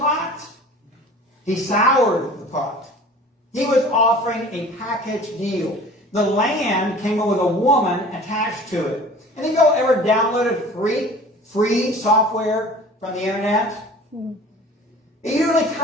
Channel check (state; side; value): normal; both; correlation 0.44